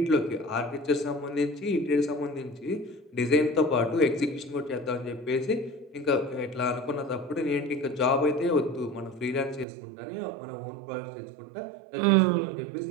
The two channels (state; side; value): drops out; left; at 9.7 s